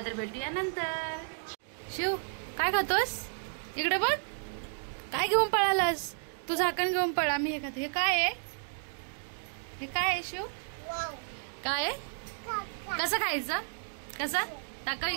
तर भेटूया नंतर. शिव काय खातोस. इकडे बघ काय घेऊन पळालास. तू झाकण घेऊन पळा. मी हे खाते. हे काय आहे. हे काय आहे शिव. काय आहे. कसं खायचं. कसं टाका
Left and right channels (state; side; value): silent; left; digital silence